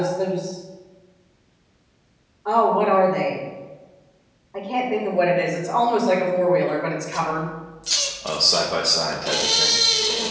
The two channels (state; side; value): identical; both; correlation 1.00